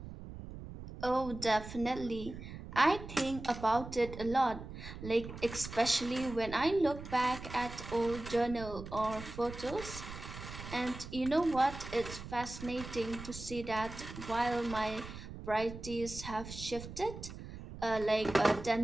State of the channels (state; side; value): noise; right; rumble, 11 dB below the sound